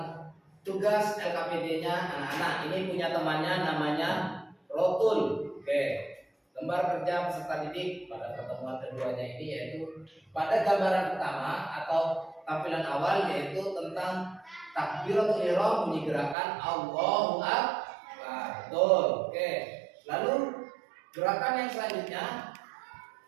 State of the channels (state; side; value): drops out; left; at 16.4 s